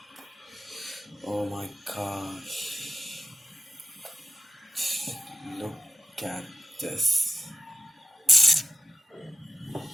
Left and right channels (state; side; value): normal; both; correlation 0.91